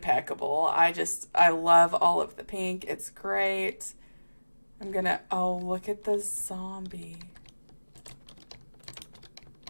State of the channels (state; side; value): inverted; both; correlation -1.00